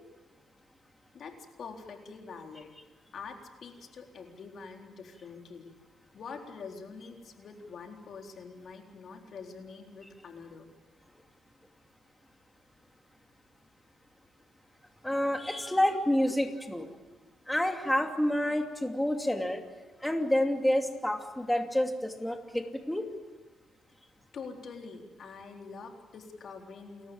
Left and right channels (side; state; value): both; normal; correlation 0.96